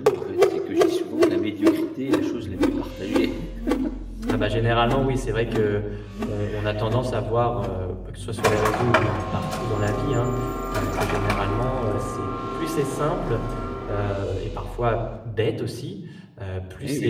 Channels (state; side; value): identical; both; correlation 1.00